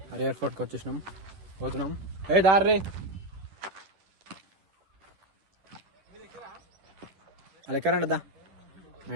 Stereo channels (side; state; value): left; late; 10 ms